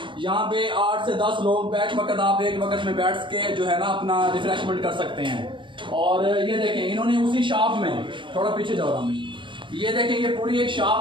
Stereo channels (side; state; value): left; late; 0.24 ms